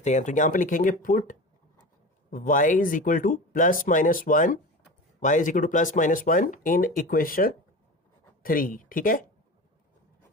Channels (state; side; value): normal; both; correlation 0.31